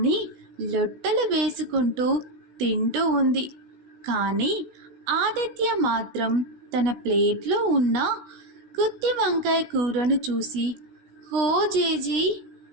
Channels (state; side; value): late; left; 16 ms